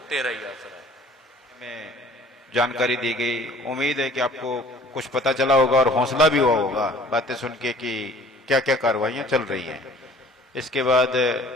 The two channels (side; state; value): both; normal; correlation 0.50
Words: तेरा ही आसरा है। में जानकारी दी गई, उम्मीद है कि आपको कुछ पता चला होगा और हौसला भी हुआ होगा बातें सुन के कि क्या क्या कार्रवाइयां चल रही हैं। इसके बाद